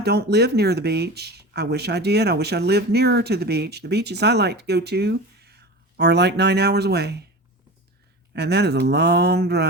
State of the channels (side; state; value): both; normal; correlation 0.31